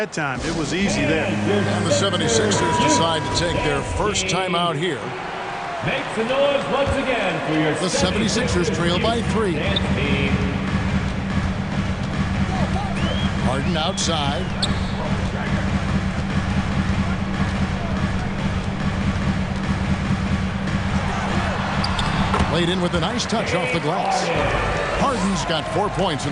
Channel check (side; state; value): both; identical; correlation 1.00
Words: time. It was easy there. And the 76ers decide to take their first time out here. Make some noise once again for your The 76ers trail by 3. Harden outside. Laid in with a nice touch off the glass. Harden's got 4 points in